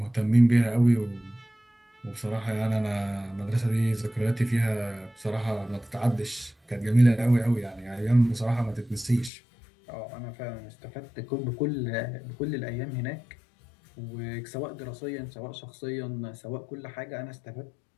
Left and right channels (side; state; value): right; drops out; at 9.3 s